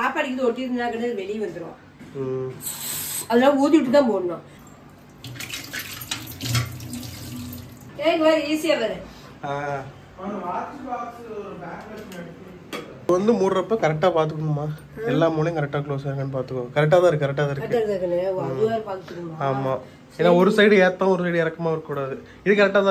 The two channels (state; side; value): identical; both; correlation 1.00